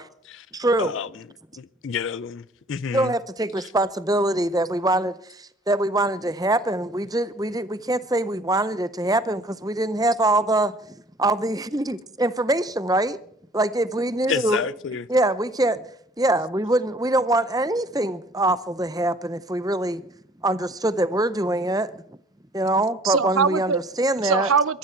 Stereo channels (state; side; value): normal; both; correlation 0.54